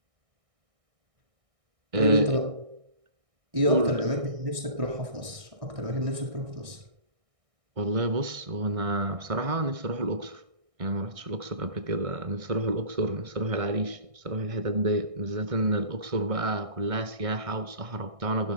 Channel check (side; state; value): left; late; 1.6 ms